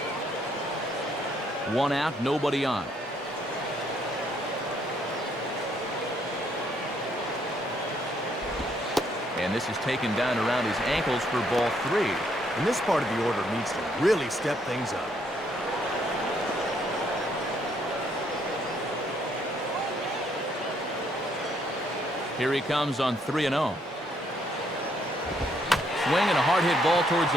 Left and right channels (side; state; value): both; normal; correlation 0.70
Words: One out, nobody on. And this is taken down around his ankles for ball 3. And this part of the order needs to really step things up. Here he comes on 3-0. Swing and a hard hit ball towards